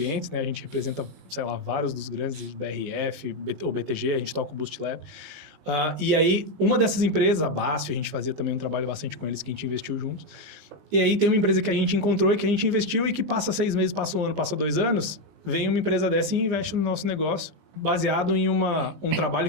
né? A gente representa, sei lá, vários dos grandes, BRF, ou BTG, a gente toca o Boost Lab. E aí, uma dessas empresas, a BASF, a gente fazia também um trabalho bastante com eles, que a gente investiu juntos. E aí tem uma empresa que a gente encontrou e que a gente investiu e que passa 6 meses, passa 1 ano, passa 2 anos, vem uma empresa dessa e investe no nosso negócio, baseado em um trabalho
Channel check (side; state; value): left; late; 19 ms